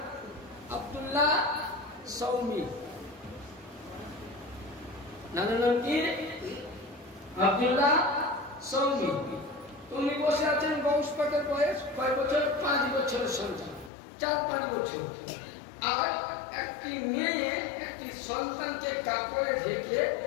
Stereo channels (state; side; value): drops out; right; at 13.9 s